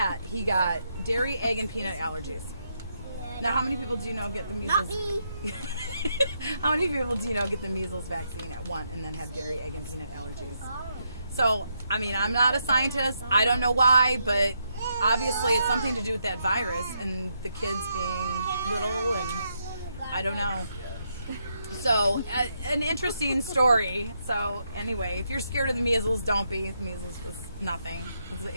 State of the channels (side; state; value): both; inverted; correlation -0.79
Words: he got dairy, egg, and peanut allergies. Now, how many people do you know get the Not measles? me. How many people do you know get the measles vaccine at 1 and then have dairy, egg, and peanut allergies? So, I mean, I'm not a scientist. I don't know why, but obviously it's something to do with that virus and the kids being little, and I don't know. So, an interesting story. So, anyway, if you're scared of the measles, don't be. The measles was nothing.